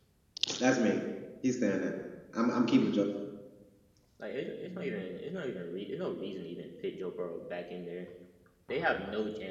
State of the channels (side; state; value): both; identical; correlation 1.00